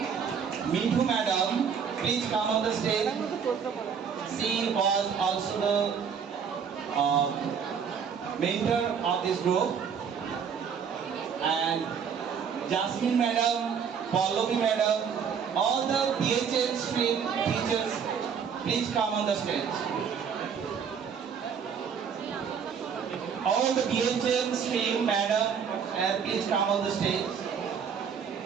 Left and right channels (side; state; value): left; quieter; 7.0 dB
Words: Mithu Madam, please come on the stage. She was also the mentor of this group. And Jasmine Madam, Pallavi Madam, all the BHL stream teachers, please come on the stage. All the BHL stream madam, please come on the stage.